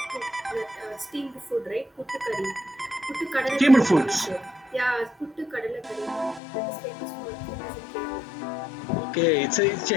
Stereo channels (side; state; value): right; drops out; at 6.4 s